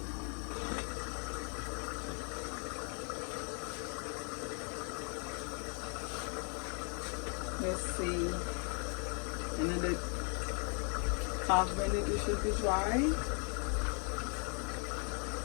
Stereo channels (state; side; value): quieter; right; 39.0 dB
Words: Let's see, another half minute it should be dry.